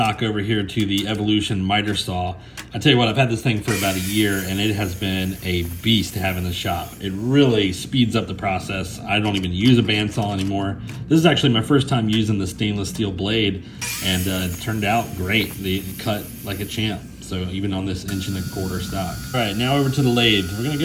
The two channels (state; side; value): identical; both; correlation 1.00